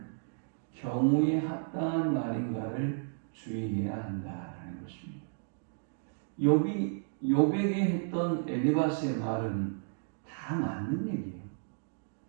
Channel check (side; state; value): left; silent; digital silence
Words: 경우에 합당한 말인가를 주의해야 한다라는 것입니다. 욥에게 했던 엘리바스의 말은 다 맞는 얘기예요.